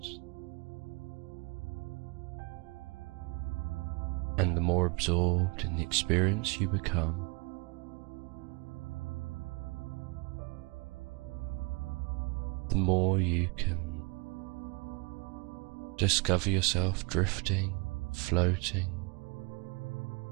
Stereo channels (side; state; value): left; quieter; 29.1 dB